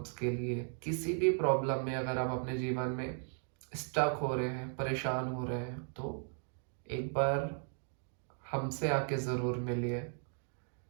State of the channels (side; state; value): left; silent; 53 dB below the other